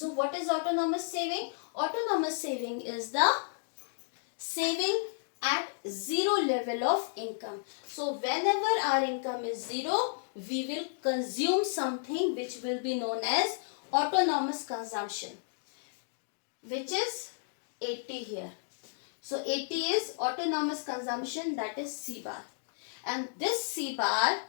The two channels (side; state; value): right; silent; digital silence